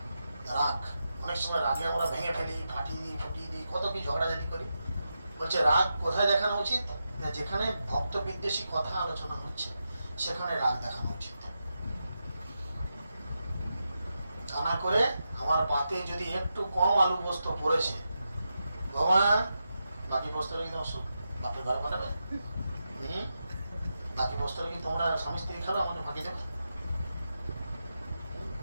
রাগ। অনেক সময় রাগে আমরা ভেঙে ফেলি, ফাটিয়ে দিই, ফুটিয়ে দিই, কত কি ঝগড়াঝাটি করি। বলছে রাগ কোথায় দেখানো উচিত না, যেখানে ভক্ত বিদ্বেষী কথা আলোচনা হচ্ছে সেখানে রাগ দেখানো উচিত। তা না করে আমার পাতে যদি একটু কম আলু পোস্ত পড়েছে, ভগবান বাকি পোস্তটা কি তোমার বাপের ঘরে পাঠাবে? বাকি পোস্তটা কি তোমরা স্বামী স্ত্রী খাবে, আমাকে ফাঁকি দেবে?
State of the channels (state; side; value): inverted; both; correlation -0.88